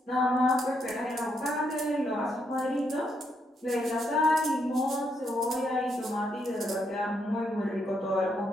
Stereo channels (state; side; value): normal; both; correlation 0.77